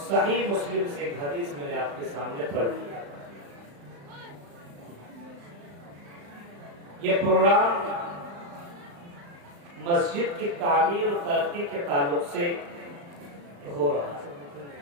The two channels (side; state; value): left; late; 35 ms